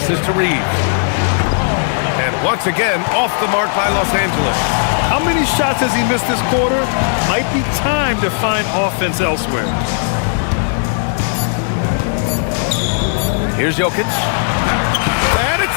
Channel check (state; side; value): silent; right; digital silence